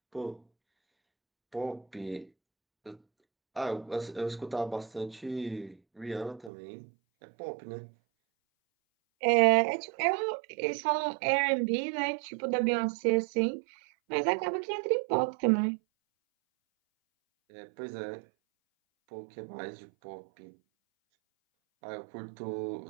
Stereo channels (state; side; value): drops out; left; at 6.5 s